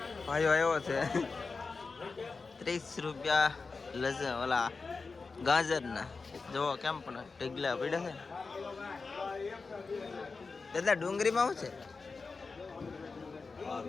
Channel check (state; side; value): quieter; right; 4.3 dB